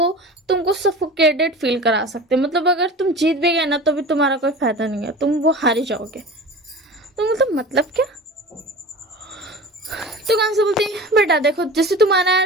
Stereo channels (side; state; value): both; normal; correlation 0.36